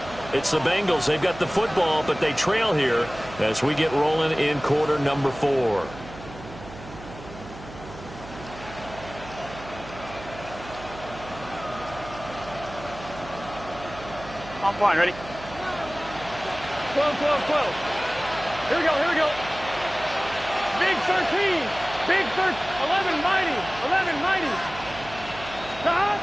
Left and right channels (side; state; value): right; noise; hum, 15 dB below the sound